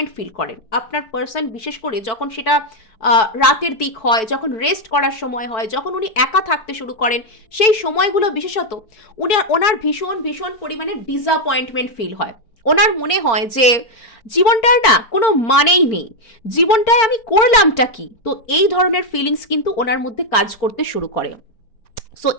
ফিল করেন। আপনার পার্সন বিশেষ করে যখন সেটা রাতের দিক হয়, যখন রেস্ট করার সময় হয়, যখন উনি একা থাকতে শুরু করেন, সেই সময়গুলো বিশেষত ওনার ভীষণ ভীষণ পরিমাণে ডিসঅ্যাপয়েন্টমেন্ট ফিল হয়। ওনার মনে হয় যে জীবনটার না কোনো মানেই নেই, জীবনটায় আমি করলামটা কি। তো এই ধরনের ফিলিংস কিন্তু ওনার মধ্যে কাজ করতে শুরু করে। সো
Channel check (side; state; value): right; late; 4.4 ms